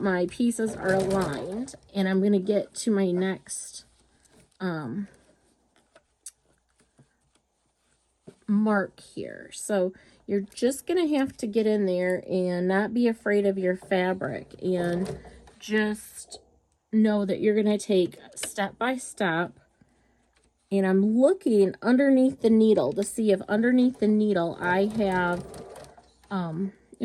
my pieces are aligned, and I'm going to get to my next mark here. So you're just going to have to get in there and not be afraid of your fabric, and just know that you're going to take step by step. And I'm looking underneath the needle to see if underneath the needle I have I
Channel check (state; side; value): identical; both; correlation 1.00